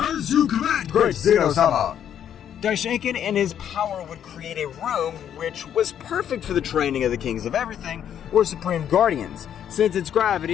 you command, great Zeno-sama! Daishinkan and his power would create a room which was perfect for the training of the kings of everything, or supreme guardians, since its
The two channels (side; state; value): right; quieter; 9.6 dB